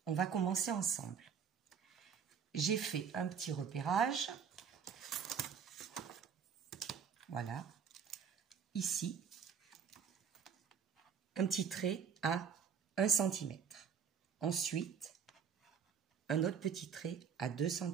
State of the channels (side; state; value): left; quieter; 7.2 dB